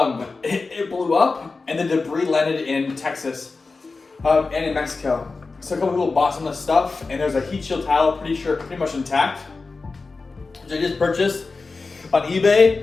It blew up, and the debris landed in Texas and in Mexico. So a couple people bought some of the stuff, and there's a heat shield tile, pretty much intact, which I just purchased on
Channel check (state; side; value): quieter; right; 4.0 dB